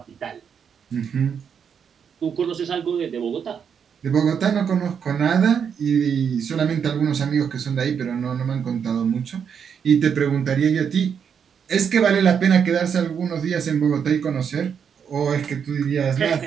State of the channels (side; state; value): left; quieter; 7.3 dB